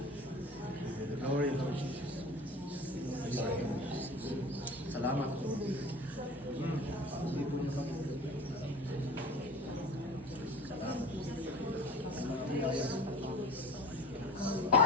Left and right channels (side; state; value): both; normal; correlation 0.39